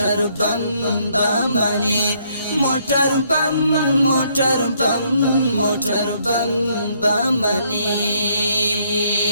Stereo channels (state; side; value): inverted; both; correlation -0.69